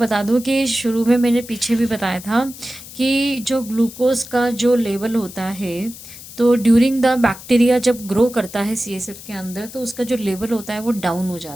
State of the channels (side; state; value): left; noise; hiss, 15 dB below the sound